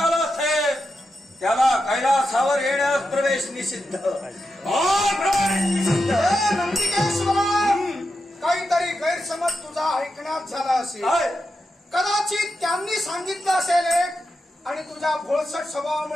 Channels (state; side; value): normal; both; correlation 0.88